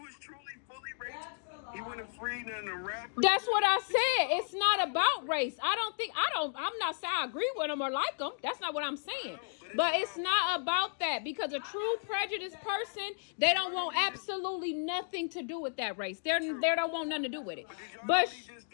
truly fully racist. He wouldn't have freed none of the rappers. That's what I said. It's not about race. I'm not saying I agree with them or like them. That's not what I'm saying. But it's not about that, because a true prejudiced person, they don't want absolutely nothing to do with that race. They don't want nothing to do with it. But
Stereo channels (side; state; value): right; silent; digital silence